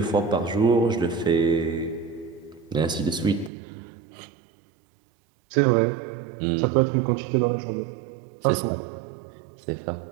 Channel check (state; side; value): drops out; left; at 3.5 s